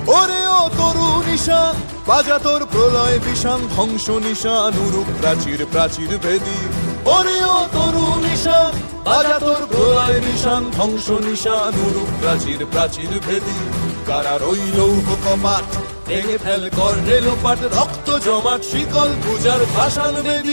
ওরে ও তরু নিশান বাজা তোর প্রলয় বিষান, ধ্বংস নিশান উরুক প্রাচীর প্রাচীর ভেদী। ওরে ও তরু নিশান বাজা তোর প্রলয় নিশান, ধ্বংস নিশান উরুক প্রাচীর প্রাচীর ভেদী। কারার ওই লৌহ কপাট ভেঙে ফেল কর রে লোপাট, রক্ত জমাট শিকল পূজার পাষাণ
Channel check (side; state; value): both; inverted; correlation -1.00